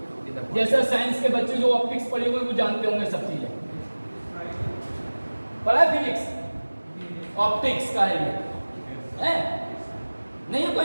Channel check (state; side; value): inverted; both; correlation -1.00